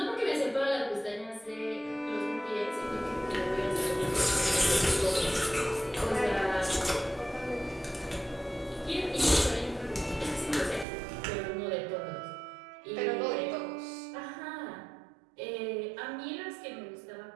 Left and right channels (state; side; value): drops out; left; at 10.9 s